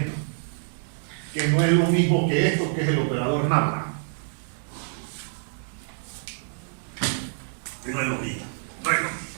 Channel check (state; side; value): silent; left; digital silence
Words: Que no es lo mismo que esto, que es el operador nada. Que no es lo mismo. No es lo mismo.